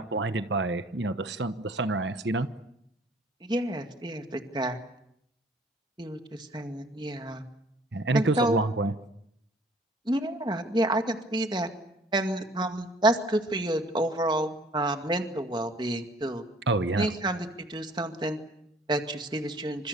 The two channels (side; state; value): both; normal; correlation 0.55